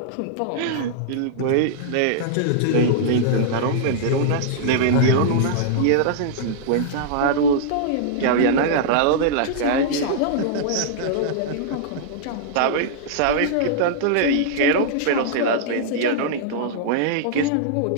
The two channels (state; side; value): different; both; correlation -0.02